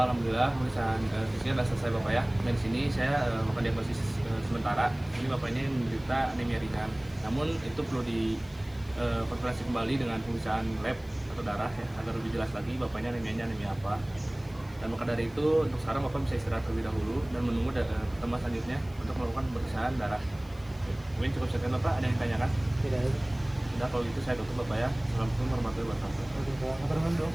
alhamdulillah pemeriksaan fisiknya sudah selesai Bapak ya. Dan di sini saya melakukan diagnosis sementara. Ini Bapak ini menderita anemia ringan. Namun itu perlu dikonfirmasi kembali dengan pemeriksaan lab atau darah ya, agar lebih jelas lagi Bapaknya anemianya anemia apa. Dan maka dari itu untuk sekarang Bapak bisa istirahat terlebih dahulu dan menunggu pertemuan selanjutnya untuk melakukan pemeriksaan darah. Mungkin cukup sekian Bapak, ada yang ditanyakan? Tidak. Sudah, kalau gitu saya tutup Bapak ya. Assalamualaikum warahmatullahi wabarakatuh.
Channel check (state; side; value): noise; left; hiss, 26 dB below the sound